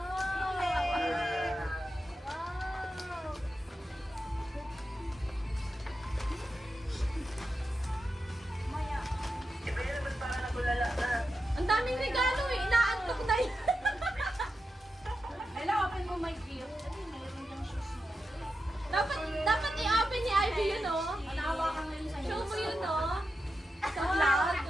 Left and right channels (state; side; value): normal; both; correlation 0.89